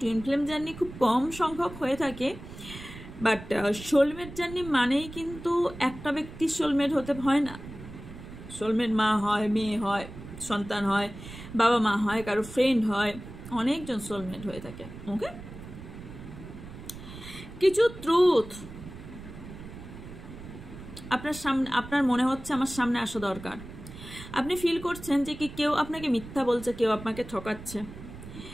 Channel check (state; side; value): noise; right; rumble, 14 dB below the sound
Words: টুইন ফ্লেম জার্নি খুব কম সংখ্যক হয়ে থাকে, বাট সোলমেট জার্নি মানেই কিন্তু একটা ব্যক্তির সোলমেট হতে হয় না। সোলমেট মা হয়, মেয়ে হয়, সন্তান হয়, বাবা মা হয়, কারো ফ্রেন্ড হয়, অনেকজন সোলমেট হয়ে থাকে। ওকে, কিছু ট্রুথ আপনার সামনে, আপনার মনে হচ্ছে আমার সামনে আসা দরকার। আপনি ফিল করছেন যে কি কেউ আপনাকে মিথ্যা বলছে, কেউ আপনাকে ঠকাচ্ছে।